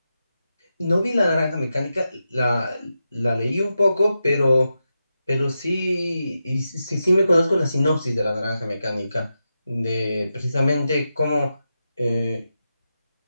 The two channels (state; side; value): inverted; both; correlation -0.89